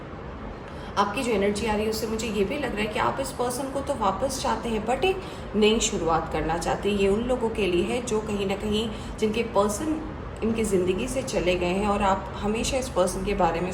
आपकी जो एनर्जी आ रही है उससे मुझे ये भी लग रहा है कि आप इस पर्सन को तो वापस चाहते हैं बट एक नई शुरुआत करना चाहते हैं। ये उन लोगों के लिए है जो कहीं ना कहीं जिनके पर्सन इनकी ज़िंदगी से चले गए हैं और आप हमेशा इस पर्सन के बारे में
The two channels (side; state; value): both; identical; correlation 1.00